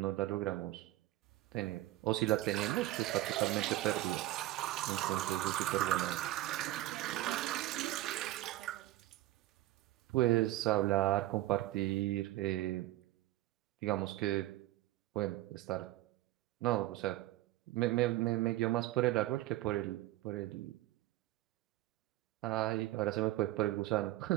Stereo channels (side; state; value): left; quieter; 16.2 dB